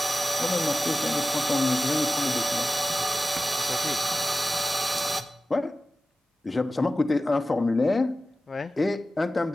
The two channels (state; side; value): normal; both; correlation 0.95